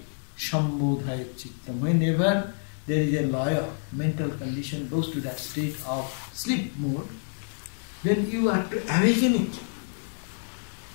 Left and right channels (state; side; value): silent; right; digital silence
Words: sambodhaya chittam. Whenever there is a loya, mental condition goes to that state of sleep mode, then you have to awaken it.